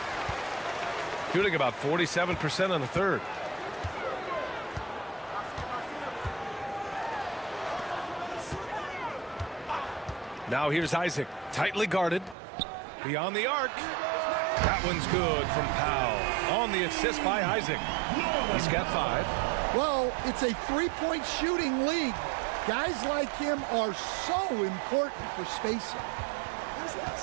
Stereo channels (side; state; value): left; drops out; at 12.4 s